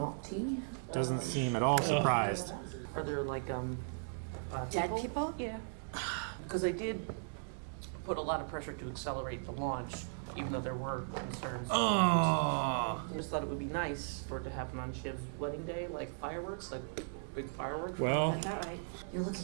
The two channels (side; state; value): left; silent; digital silence